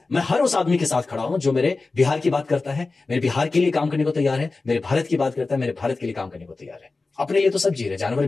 हर उस आदमी के साथ खड़ा हूं जो मेरे बिहार की बात करता है, मेरे बिहार के लिए काम करने को तैयार है, मेरे भारत की बात करता है, मेरे भारत के लिए काम करने को तैयार है। अपने लिए तो सब जी रहे, जानवर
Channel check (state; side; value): quieter; right; 3.7 dB